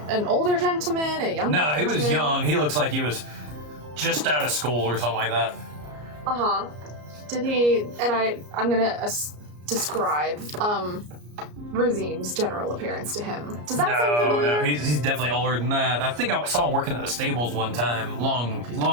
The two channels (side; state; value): left; late; 34 ms